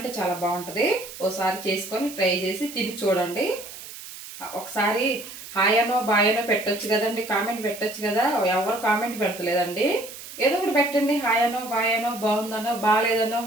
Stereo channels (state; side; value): noise; right; hiss, 13 dB below the sound